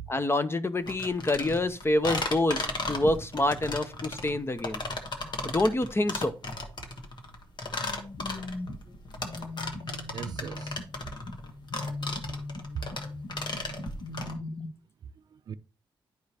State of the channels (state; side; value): normal; both; correlation 0.70